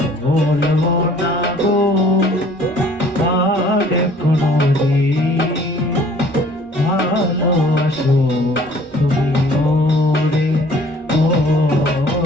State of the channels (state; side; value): normal; both; correlation 0.54